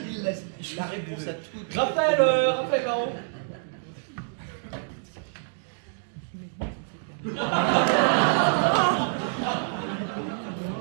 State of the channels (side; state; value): left; silent; digital silence